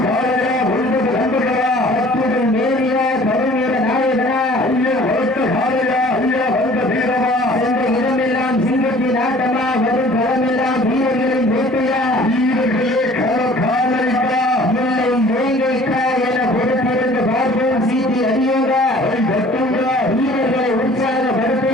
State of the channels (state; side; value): normal; both; correlation 0.51